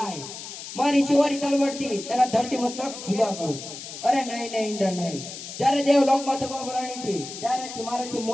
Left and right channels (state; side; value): noise; left; hiss, 11 dB below the sound